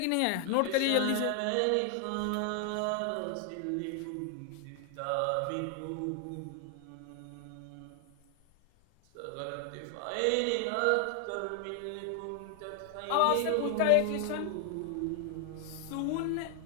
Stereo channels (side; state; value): both; different; correlation 0.00